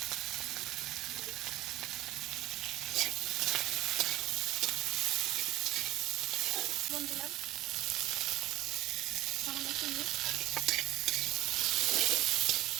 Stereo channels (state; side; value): quieter; left; 16.3 dB